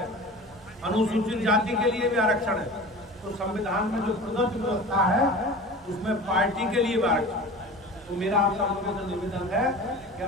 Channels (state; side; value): normal; both; correlation 0.36